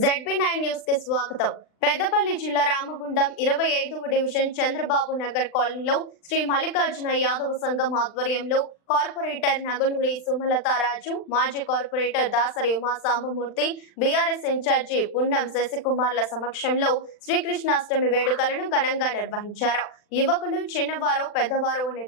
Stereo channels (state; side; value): late; right; 39 ms